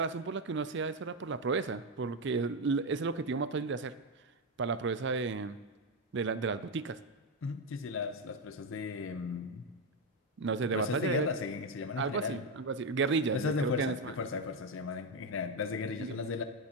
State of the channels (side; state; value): both; normal; correlation 0.07